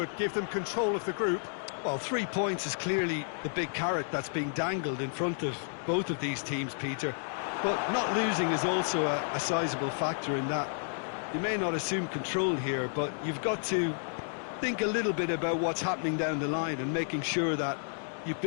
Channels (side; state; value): right; silent; digital silence